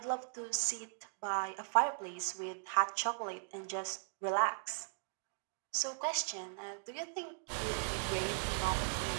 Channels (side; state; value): left; silent; digital silence